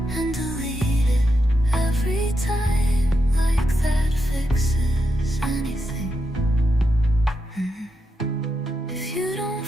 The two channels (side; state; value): both; normal; correlation 0.84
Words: and delete it every time, like that fixes anything. If you don't